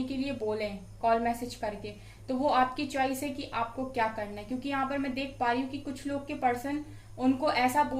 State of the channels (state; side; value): identical; both; correlation 1.00